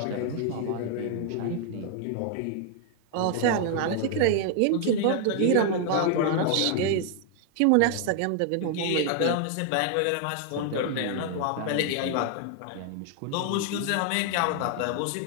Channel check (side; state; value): both; different; correlation 0.00